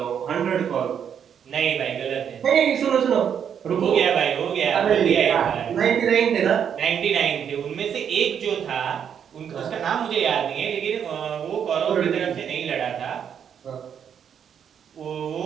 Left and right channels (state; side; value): quieter; left; 8.2 dB